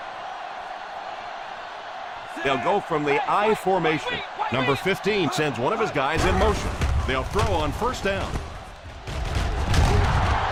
They'll go from the I formation. Number 15 sends one of his guys in motion. They'll throw on 1st down.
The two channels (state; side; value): identical; both; correlation 1.00